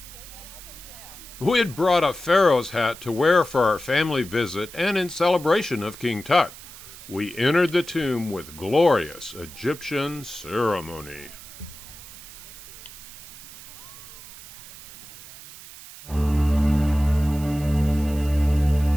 We had brought a pharaoh's hat to wear for our family visit and in celebration of King Tut. We entered the tomb with glorious Egyptian ceremony.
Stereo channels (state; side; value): noise; right; hiss, 16 dB below the sound